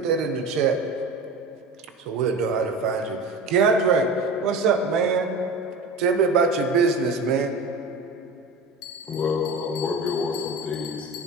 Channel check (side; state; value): left; quieter; 3.0 dB